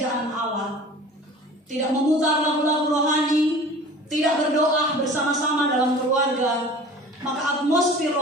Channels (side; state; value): both; normal; correlation 0.42